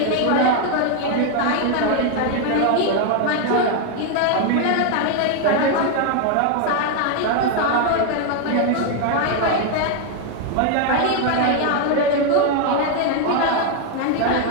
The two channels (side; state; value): both; different; correlation 0.01